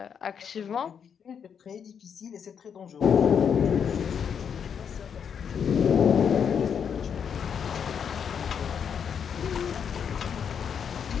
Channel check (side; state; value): right; quieter; 7.4 dB